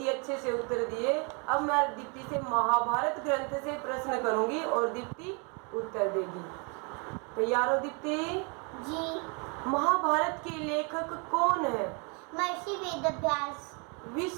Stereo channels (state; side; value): quieter; left; 34.4 dB